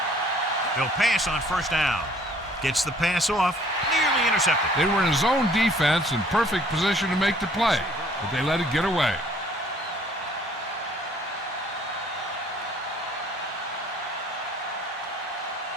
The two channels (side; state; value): both; normal; correlation 0.58